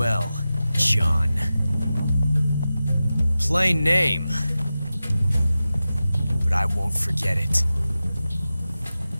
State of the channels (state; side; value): inverted; both; correlation -0.94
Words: John. Plain name. But I won't forget it.